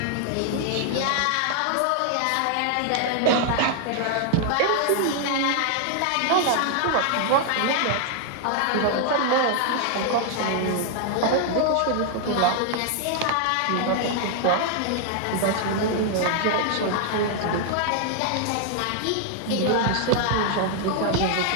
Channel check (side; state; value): both; different; correlation 0.00